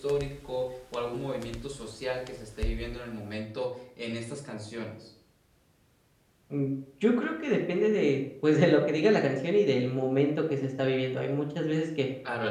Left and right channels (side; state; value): both; identical; correlation 1.00